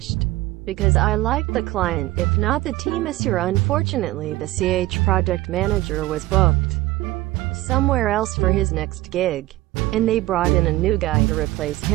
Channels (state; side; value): quieter; left; 17.9 dB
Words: because I liked the client, if not the team. Unfortunately, the CH project manager was booked somewhere else for his next gig, and they brought in a new guy to replace